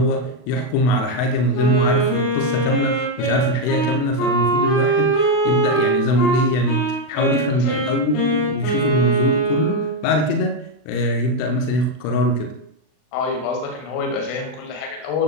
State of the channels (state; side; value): late; right; 39 ms